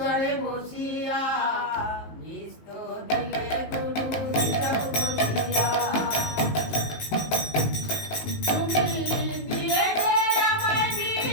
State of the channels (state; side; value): late; right; 19 ms